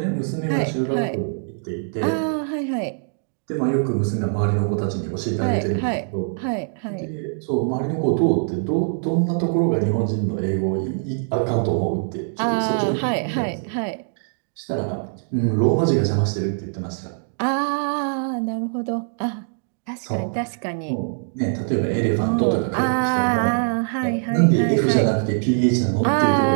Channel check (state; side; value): silent; left; digital silence